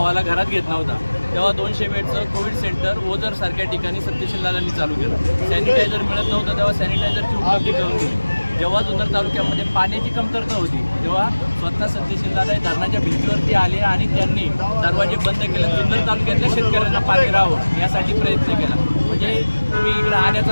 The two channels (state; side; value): inverted; both; correlation -1.00